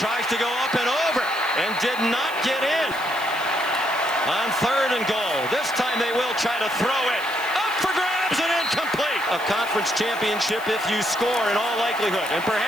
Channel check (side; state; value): left; noise; hiss, 18 dB below the sound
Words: to go up and over and did not get in. On 3rd and goal. This time they will try to throw it. Up for grabs and incomplete. A conference championship if you score in all likelihood. And